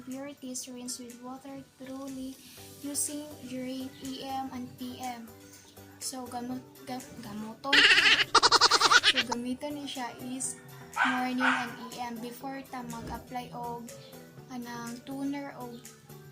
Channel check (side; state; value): both; identical; correlation 1.00